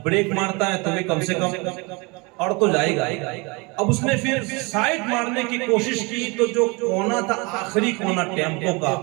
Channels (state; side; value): quieter; left; 27.8 dB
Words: بریک مارتا ہے تو بھی کم سے کم اور تو جائے گا۔ اب اس نے پھر سائیڈ مارنے کی کوشش کی تو جو کونا تھا، آخری کونا ٹیمپو کا،